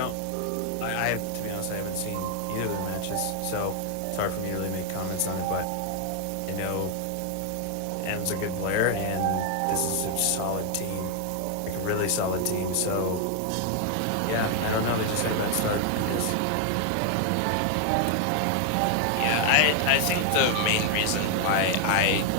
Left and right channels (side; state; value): both; different; correlation 0.00